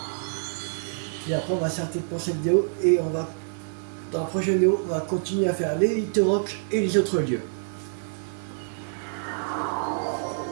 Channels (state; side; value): silent; left; 60 dB below the other